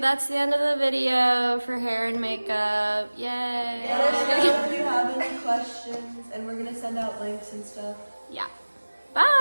the end of the video for hair and makeup. Yay! Let us know if you have any questions, and we're gonna send out links and stuff. Yeah.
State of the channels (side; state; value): both; inverted; correlation -1.00